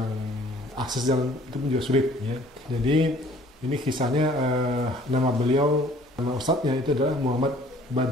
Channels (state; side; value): normal; both; correlation 0.55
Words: akses jalan itu pun juga sulit ya. Jadi ini kisahnya nama ustadznya itu adalah Muhammad